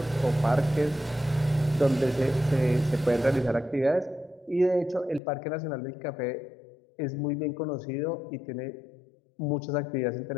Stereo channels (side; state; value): right; drops out; at 5.2 s